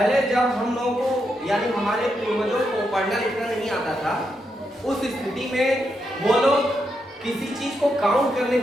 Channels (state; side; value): normal; both; correlation 0.83